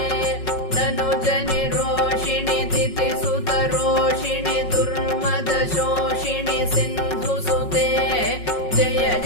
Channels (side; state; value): right; late; 5.4 ms